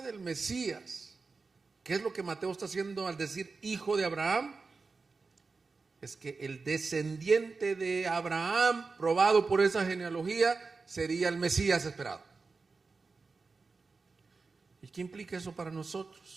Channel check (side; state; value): left; quieter; 4.3 dB